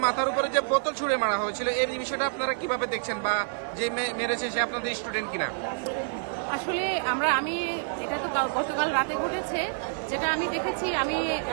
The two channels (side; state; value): left; silent; digital silence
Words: মাথার উপরে যে বোতল ছুঁড়ে মারা হয়েছিল এই বিষয়টা আপনারা কিভাবে দেখছেন, বা যে মেরেছে সে আপনাদের স্টুডেন্ট কিনা? আসলে আমি এটা তো গতকাল রাতে ঘটেছে, যেটা আমি দেখেছি, আমি